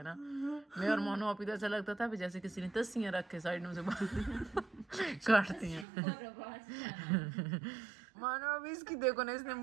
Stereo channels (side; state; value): left; drops out; at 5.9 s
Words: ना, मैं और मानो आप ही तो ऐसा लगता था जैसे किसी ने तस्सियाँ रख के साइड में से काटती हैं। और आवाज नहीं मानो अभी इसकी देखो ना, इसने